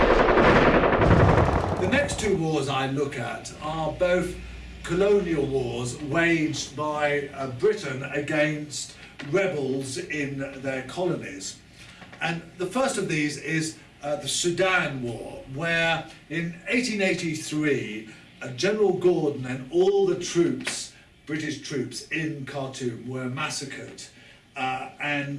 The next two wars I look at are both colonial wars waged by Britain against rebels in their colonies. And the first of these is the Sudan War, where in 1883 General Gordon and all the troops, British troops in Khartoum, were massacred,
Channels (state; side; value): identical; both; correlation 1.00